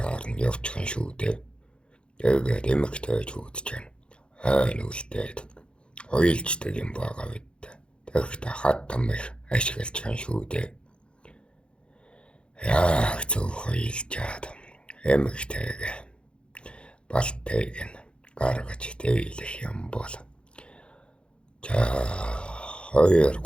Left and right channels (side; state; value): right; late; 0.056 ms